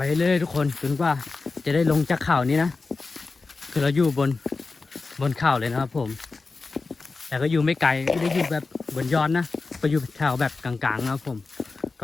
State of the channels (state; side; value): quieter; right; 4.0 dB